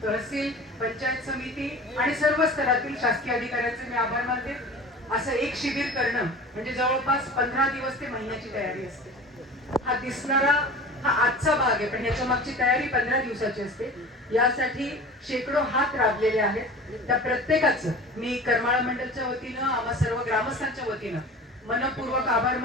तहसील पंचायत समिती आणि सर्व स्तरातील शासकीय अधिकाऱ्यांचे मी आभार मानते। असं एक शिबिर करणं म्हणजे जवळपास 15 दिवस ते महिन्याची तयारी असते। हा दिसणारा हा आजचा भाग आहे पण याच्या मागची तयारी 15 दिवसाची असते। यासाठी शेकडो हात राबलेले आहेत। त्या प्रत्येकाचं मी करमाळा मंडळच्या वतीनं आम्हा सर्व ग्रामस्थांच्या वतीनं मनपूर्वक आभार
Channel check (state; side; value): normal; both; correlation 0.38